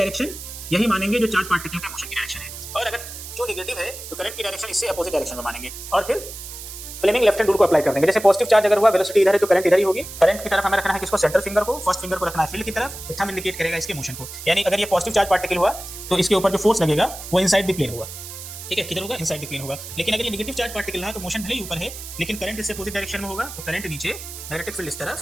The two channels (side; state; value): right; noise; hiss, 11 dB below the sound